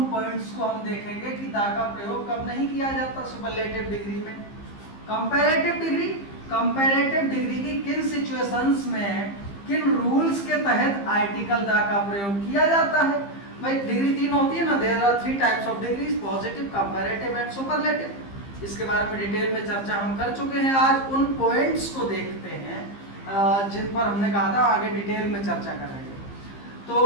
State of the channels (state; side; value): late; right; 15 ms